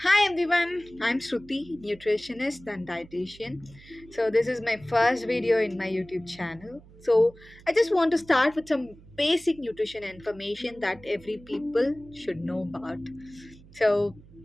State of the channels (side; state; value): right; noise; hum, 22 dB below the sound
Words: Hi everyone, I'm Sruthi, nutritionist and dietitian. So this is my first video in my YouTube channel. So I just want to start with some basic nutrition information that every people should know about. So